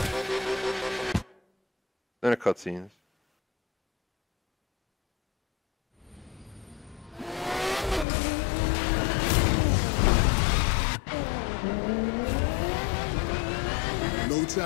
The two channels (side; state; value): right; drops out; at 8.1 s